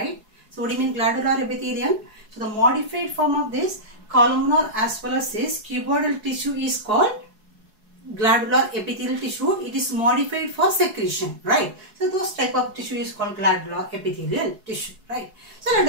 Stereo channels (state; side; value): late; left; 4.7 ms